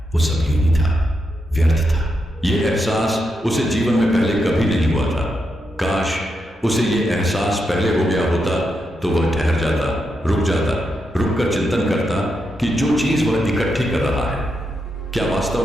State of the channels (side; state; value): both; normal; correlation 0.84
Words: वो सब यूं ही था, व्यर्थ था। यह एहसास उसे जीवन में पहले कभी नहीं हुआ था। काश उसे यह एहसास पहले हो गया होता तो वह ठहर जाता, रुक कर चिंतन करता कि जो चीज वह इकट्ठी कर रहा है, क्या